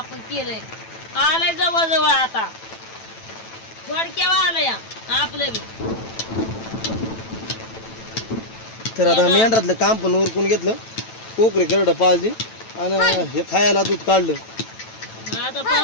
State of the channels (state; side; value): late; right; 9.1 ms